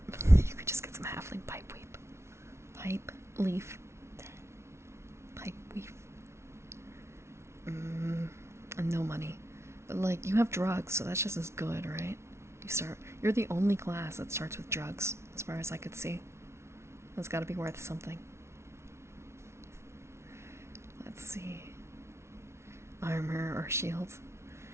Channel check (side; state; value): left; late; 0.13 ms